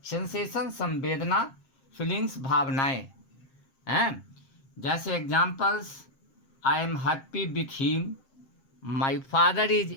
सेंसेशन संवेदना, फीलिंग्स भावनाएं हैं. जैसे examples, I am happy with him, my father is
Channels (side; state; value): right; late; 7.5 ms